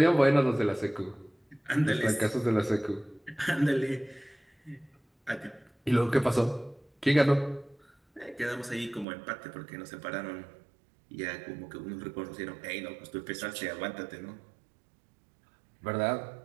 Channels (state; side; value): drops out; left; at 9.1 s